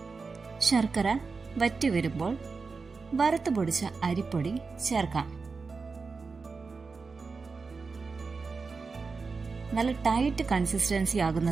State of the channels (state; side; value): quieter; left; 4.5 dB